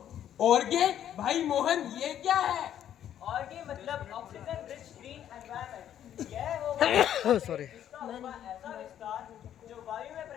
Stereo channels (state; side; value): quieter; right; 10.5 dB